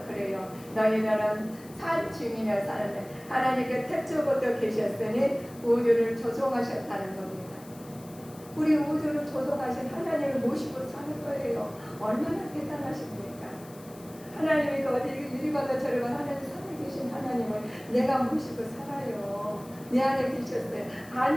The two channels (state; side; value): noise; left; hiss, 22 dB below the sound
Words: 그래요. 너희들은 산 증인을 사는데 하나님께 태초부터 계셨으니 우주를 조성하셨다는 겁니다. 우리 우주를 조성하신 하나님을 모시고 사는 거예요. 얼마나 대단하십니까? 하나님이 어디 이리 가다 저리 가다 하나님 살아계신 하나님을 내가 모시고 살아요. 내 안에 계셨어요.